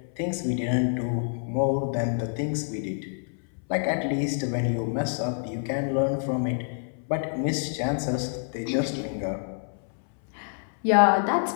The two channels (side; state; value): right; silent; 60 dB below the other